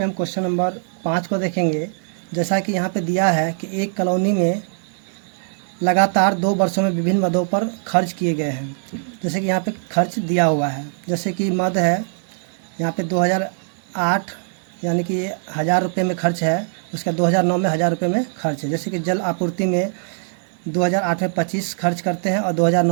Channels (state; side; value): silent; left; 65 dB below the other